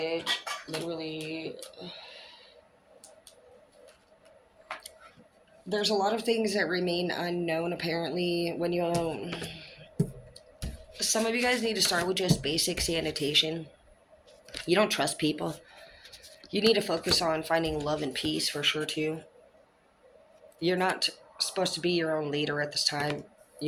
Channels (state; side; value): identical; both; correlation 1.00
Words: Literally. There's a lot of things that remain unknown apparently when you some of you guys need to start with just basic sanitation. You don't trust people. You need to focus on finding love and peace for sure too. You're not supposed to be your own leader at this time.